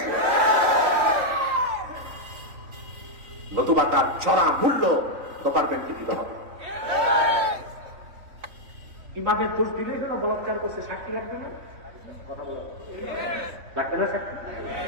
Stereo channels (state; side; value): late; left; 3.9 ms